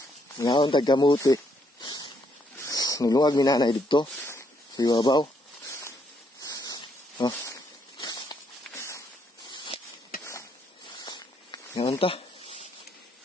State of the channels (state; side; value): normal; both; correlation 0.73